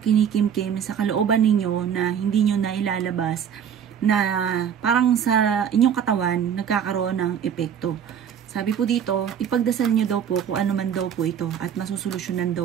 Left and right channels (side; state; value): left; quieter; 8.4 dB